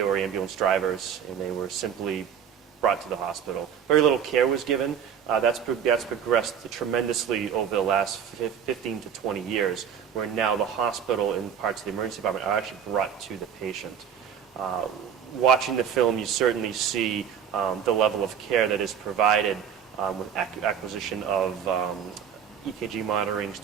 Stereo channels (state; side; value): quieter; left; 8.2 dB